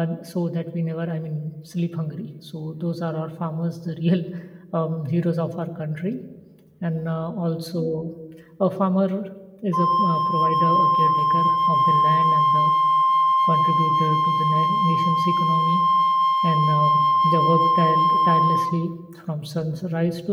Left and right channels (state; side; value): identical; both; correlation 1.00